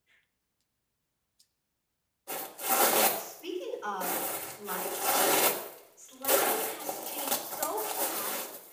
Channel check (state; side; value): identical; both; correlation 1.00